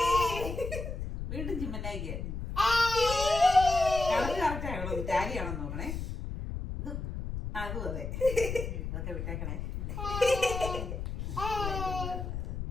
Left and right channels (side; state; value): left; noise; rumble, 5 dB below the sound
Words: വീണ്ടും ചിമ്മന്നായിക്ക്. കറക്റ്റാണോ ടാലിയാണെന്ന് നോക്കണേ. ഇത് അതും അതെ. അതൊക്കെ വിട്ടേക്കണേ.